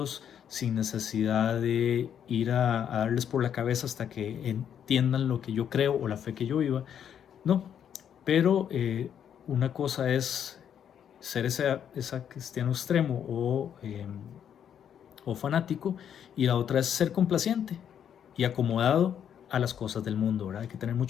sin necesidad de ir a darles por la cabeza hasta que entiendan lo que yo creo o la fe que yo viva. No, pero una cosa es ser ese cristiano extremo o fanático, y la otra es ser complaciente y acomodado a las cosas del mundo, ¿verdad? Hay que tener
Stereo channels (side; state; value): right; quieter; 8.9 dB